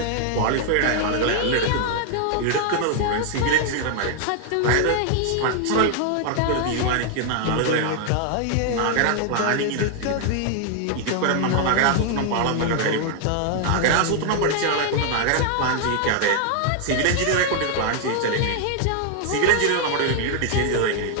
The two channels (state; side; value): different; both; correlation 0.00